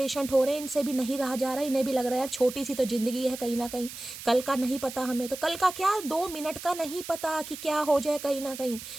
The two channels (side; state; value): right; noise; hiss, 12 dB below the sound